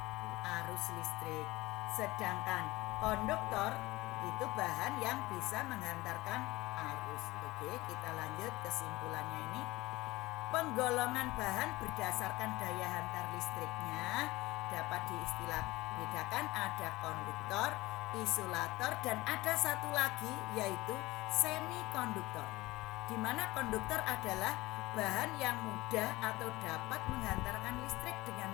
arus listrik. Sedangkan konduktor itu bahan yang bisa menghantarkan arus. Oke, kita lanjut kesimpulannya ini. Penggolongan bahan berdasarkan daya hantar listriknya dapat diistilah bedakan, ada konduktor, isolator, dan ada satu lagi yaitu semikonduktor, di mana konduktor adalah bahan yang mudah atau dapat menghantarkan listrik dengan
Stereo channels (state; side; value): quieter; right; 19.8 dB